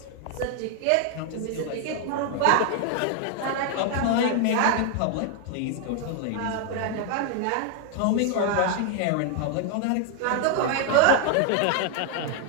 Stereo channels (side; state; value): both; different; correlation 0.00